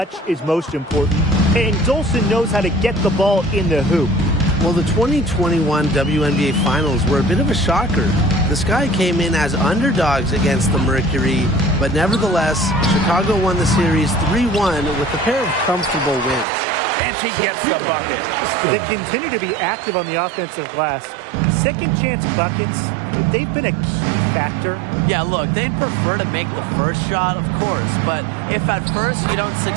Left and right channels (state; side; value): drops out; left; at 16.4 s